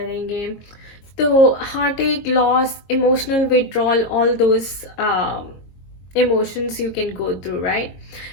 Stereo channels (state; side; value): late; right; 22 ms